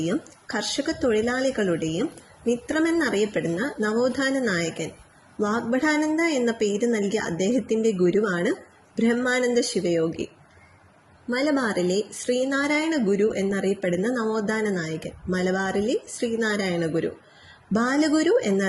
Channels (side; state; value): both; identical; correlation 1.00